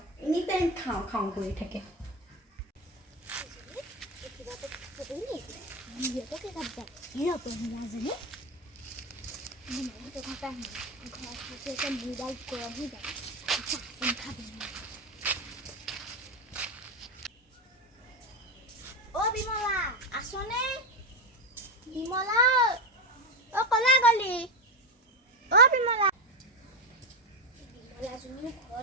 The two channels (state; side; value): normal; both; correlation 0.14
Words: এনি টাইম খাওঁ খাওঁ কৰি থাকে। বিমলা আছনে? বিমলা কলা গলি? বিমলা বিমলাজনী